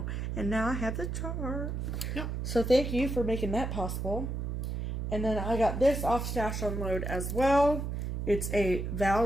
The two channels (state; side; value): noise; right; hum, 3 dB below the sound